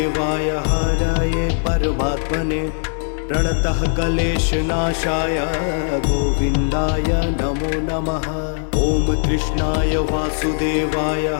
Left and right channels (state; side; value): silent; right; 66 dB below the other